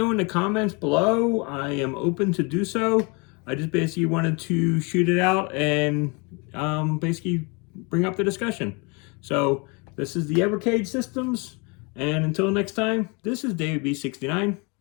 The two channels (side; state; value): right; quieter; 30.7 dB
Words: in the comments below. I am open to do so. I just basically wanted to shoot it out and basically bring up the discussion. So this is the Evercade Systems, and until next time, this is David B69.